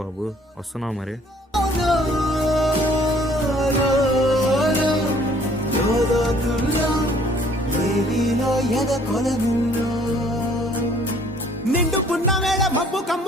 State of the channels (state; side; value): normal; both; correlation 0.58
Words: బాబు, వస్తున్నావు మరి. నిండు పున్నమేళ మబ్బు